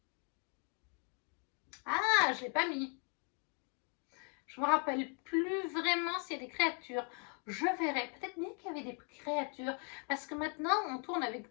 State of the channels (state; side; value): quieter; right; 37.3 dB